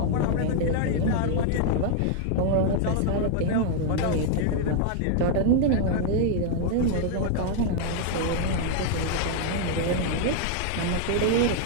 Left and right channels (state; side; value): different; both; correlation 0.00